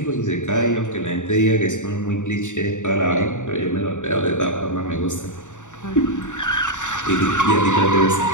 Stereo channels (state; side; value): late; right; 0.85 ms